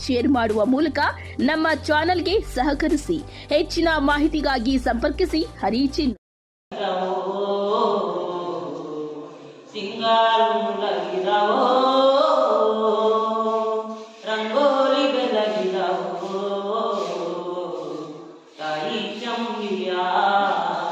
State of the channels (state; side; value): identical; both; correlation 1.00